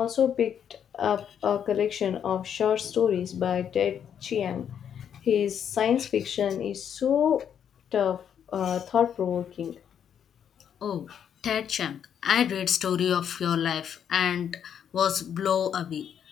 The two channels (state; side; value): quieter; right; 8.6 dB